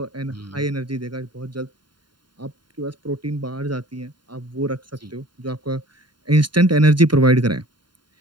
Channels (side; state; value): left; late; 0.71 ms